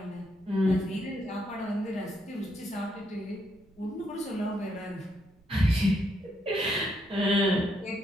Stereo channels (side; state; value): right; noise; rumble, 29 dB below the sound